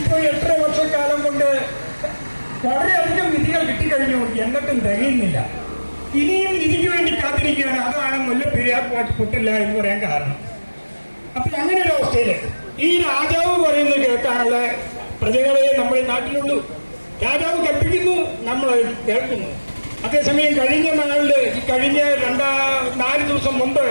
8 വർഷക്കാലം കൊണ്ട് വളരെയധികം നിധികൾ കിട്ടിക്കഴിഞ്ഞു, എന്നിട്ടും തികയുന്നില്ല. ഇനിയും നിധിക്ക് വേണ്ടി കാത്തിരിക്കുകയാണ്. അതാണ് മുല്ലപ്പെരിയാർ പൊട്ടില്ല എന്ന് പറയാൻ കാരണം. അപ്പൊ അങ്ങനെ ഒരു അവസ്ഥയില് ഈ രാജാവ് പറയുന്നത് കേൾക്കാനുള്ള പ്രജകളെ നമ്മുടെ നാട്ടിലുള്ളൂ. രാജാവ് കൽപ്പിക്കുന്നു, നമ്മൾ കേൾക്കുന്നു. അതേസമയം കഴിഞ്ഞ 4 ദിവസം മുമ്പ്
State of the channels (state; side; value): inverted; both; correlation -1.00